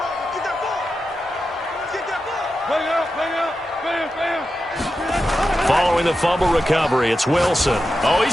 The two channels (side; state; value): both; normal; correlation 0.90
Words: throwing the fumble recovery. It's Wilson. Oh,